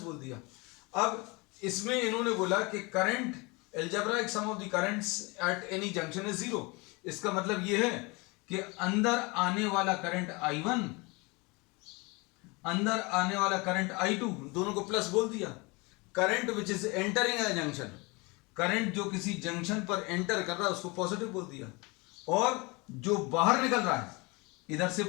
बोल दिया। अब इसमें इन्होंने बोला कि current, algebraic sum of the currents at any junction is zero. इसका मतलब यह है कि अंदर आने वाला करंट I1, अंदर आने वाला करंट I2, दोनों को प्लस बोल दिया। Current which is entering a junction, current जो किसी जंक्शन पर एंटर कर रहा है उसको पॉजिटिव बोल दिया, और जो बाहर निकल रहा है, इधर से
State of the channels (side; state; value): right; quieter; 26.9 dB